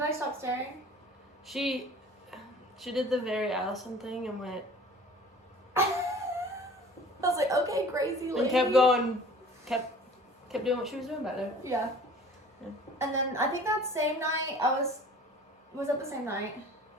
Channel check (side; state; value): both; normal; correlation 0.46